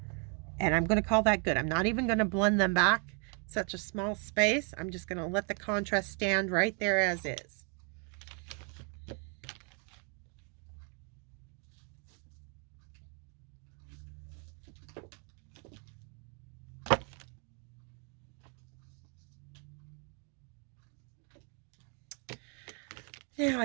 and I'm going to call that good. I'm not even going to blend them back, such a small space. I'm just going to let the contrast stand right there as is. Now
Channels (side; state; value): left; quieter; 38.6 dB